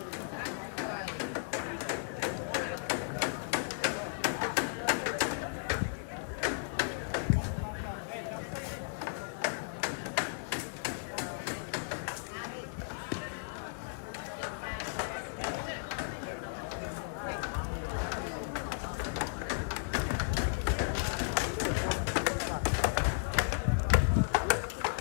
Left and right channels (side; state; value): right; silent; digital silence